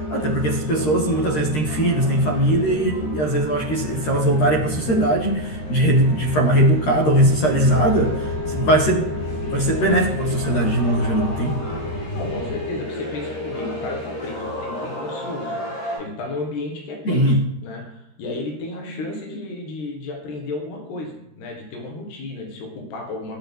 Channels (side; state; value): right; late; 13 ms